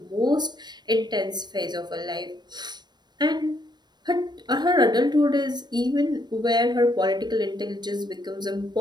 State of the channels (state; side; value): late; left; 0.21 ms